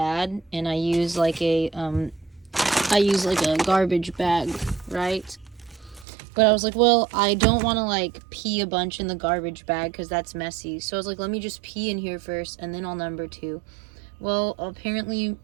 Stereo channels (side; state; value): left; drops out; at 6.1 s